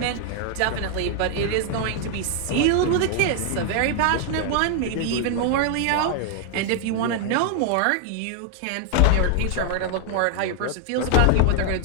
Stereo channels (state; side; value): different; both; correlation 0.00